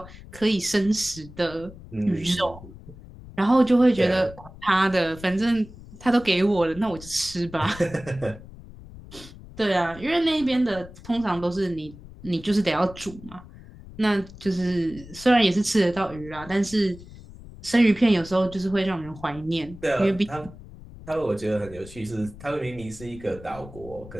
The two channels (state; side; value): noise; left; rumble, 17 dB below the sound